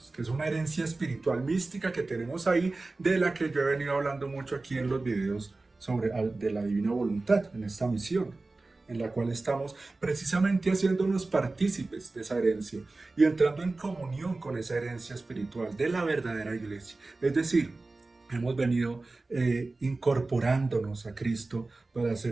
que es una herencia espiritual mística que tenemos ahí, de la que yo he venido hablando mucho aquí en los videos sobre de la divina voluntad, en esta misión, en la cual estamos precisamente haciéndonos partícipes de esa herencia y entrando en comunión con esa herencia espiritual de la verdadera iglesia. Es decir, hemos venido incorporándonos a Cristo para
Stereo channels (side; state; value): left; quieter; 3.3 dB